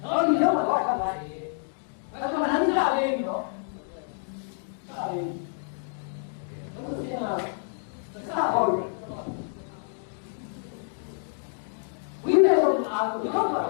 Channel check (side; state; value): right; silent; 59 dB below the other